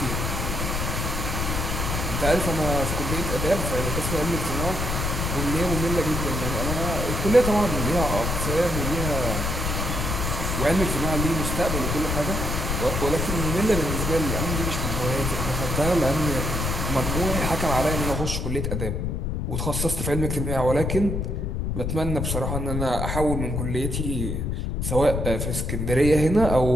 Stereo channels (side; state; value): left; noise; rumble, 1 dB below the sound